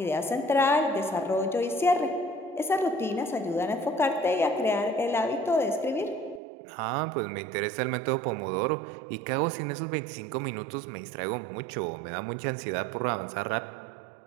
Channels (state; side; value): drops out; left; at 6.4 s